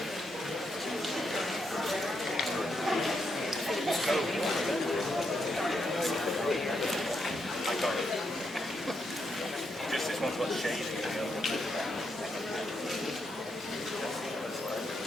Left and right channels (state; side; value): normal; both; correlation 0.80